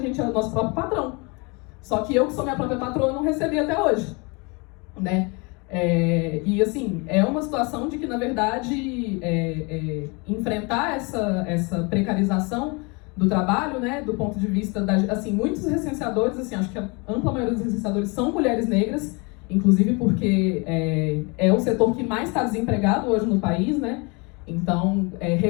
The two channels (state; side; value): quieter; right; 29.8 dB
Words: é o nosso próprio patrão. Só que eu, que sou minha própria patroa, não recebi até hoje, né? E, assim, é uma situação de que, na verdade, enfrentar essa precarização do trabalho, né, do ponto de vista assim, muitos recenseadores, assim, acho que a ampla maioria dos recenseadores são mulheres negras, inclusive porque é o setor que mais está desempregado hoje no país, né? Então,